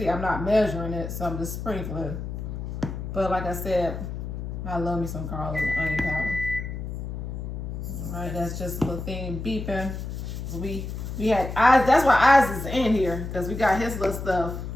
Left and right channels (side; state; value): left; noise; hum, 6 dB below the sound